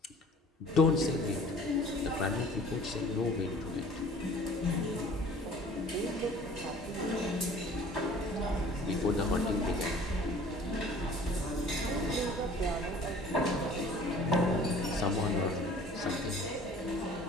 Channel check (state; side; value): normal; both; correlation 0.49